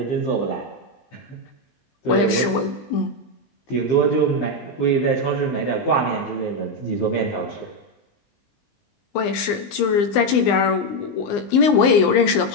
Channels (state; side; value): late; right; 20 ms